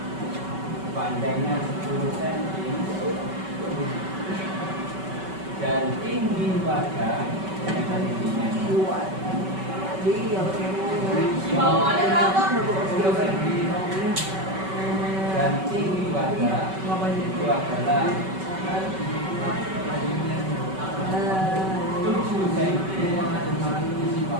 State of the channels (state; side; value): late; left; 5.3 ms